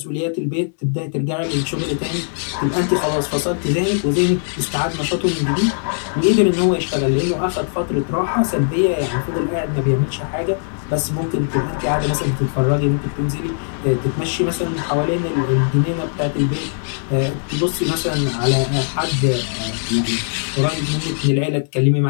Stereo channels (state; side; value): silent; right; digital silence